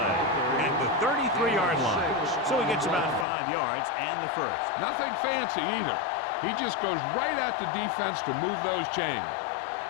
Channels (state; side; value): drops out; right; at 3.2 s